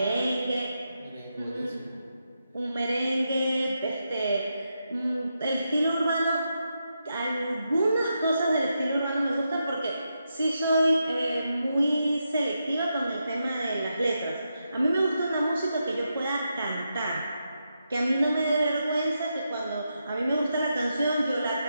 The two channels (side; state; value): both; inverted; correlation -0.85